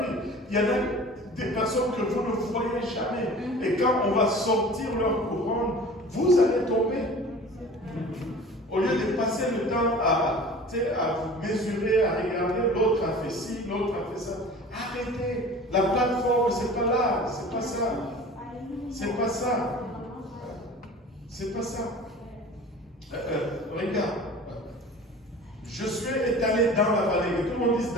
Il y en a des personnes que vous ne voyez jamais. Et quand on va sortir leur couronne, vous allez tomber. Au lieu de passer le temps à mesurer, à regarder, l'autre a fait ci, l'autre a fait ça. Arrêtez. La plateforme, c'est pas là. C'est pas ça. C'est pas ça. C'est pas ça. Regarde. Je suis étalé dans la vallée. Que tout le monde dise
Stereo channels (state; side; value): normal; both; correlation 0.41